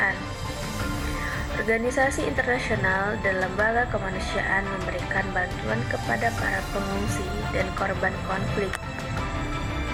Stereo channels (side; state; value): both; identical; correlation 1.00